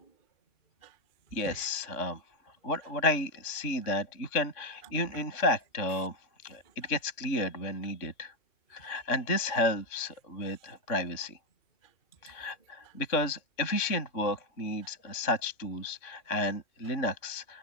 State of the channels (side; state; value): right; late; 3.5 ms